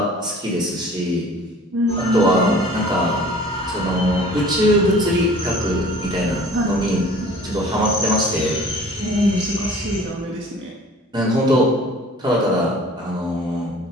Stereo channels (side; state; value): both; normal; correlation 0.48